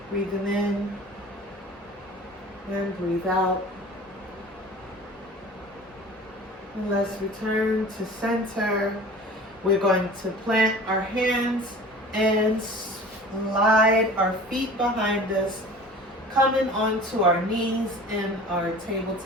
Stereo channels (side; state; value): both; normal; correlation 0.42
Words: Breathing in and breathe out. And let's return to center. We're going to plant our hands and slide our feet behind us, coming onto our knees in our